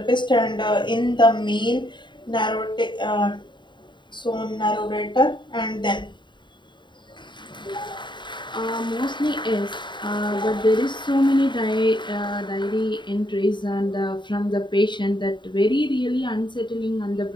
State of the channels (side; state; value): right; late; 0.23 ms